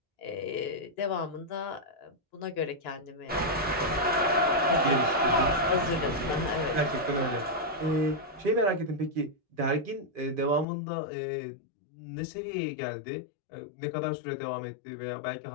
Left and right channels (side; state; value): right; drops out; at 10.7 s